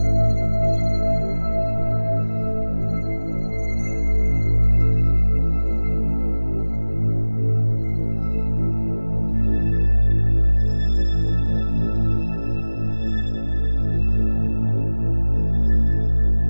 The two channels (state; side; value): inverted; both; correlation -1.00